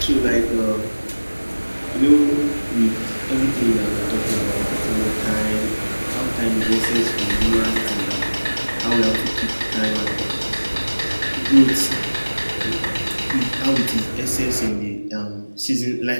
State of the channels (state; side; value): inverted; both; correlation -1.00